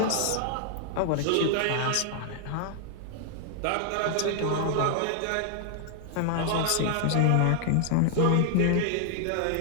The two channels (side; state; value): both; different; correlation 0.00